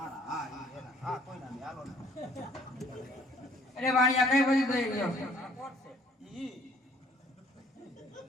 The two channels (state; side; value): normal; both; correlation 0.59